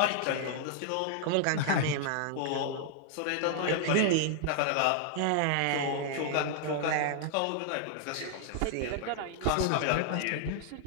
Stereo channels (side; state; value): both; different; correlation -0.01